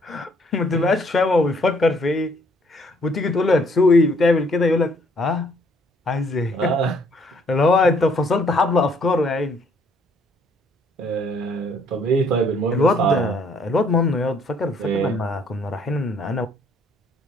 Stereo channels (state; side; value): normal; both; correlation 0.64